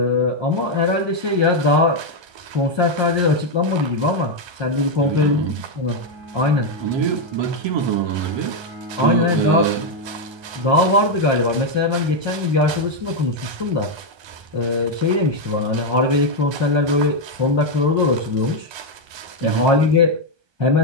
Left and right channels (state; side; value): late; left; 1.2 ms